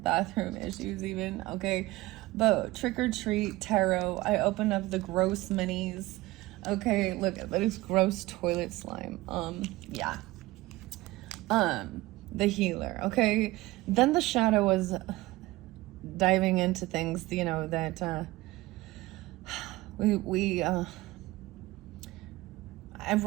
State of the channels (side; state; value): left; quieter; 19.1 dB